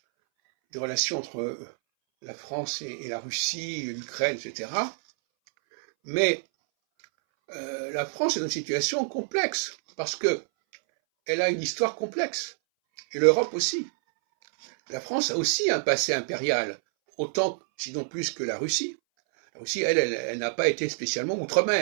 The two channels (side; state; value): left; silent; 60 dB below the other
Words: des relations entre la France et la Russie, l'Ukraine, etc. Mais la France est dans une situation complexe, parce qu'elle a une histoire complexe, et l'Europe aussi. La France a aussi un passé impérial, autant, sinon plus que la Russie. La Russie, elle n'a pas été spécialement